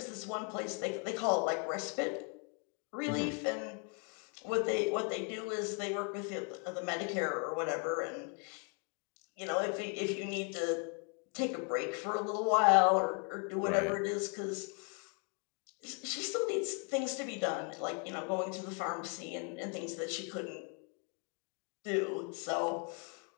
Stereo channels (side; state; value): right; quieter; 37.4 dB